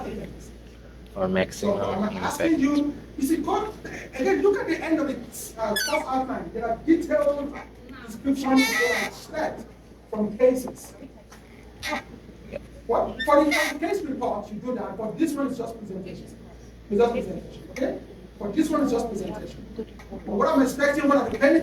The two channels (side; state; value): both; identical; correlation 1.00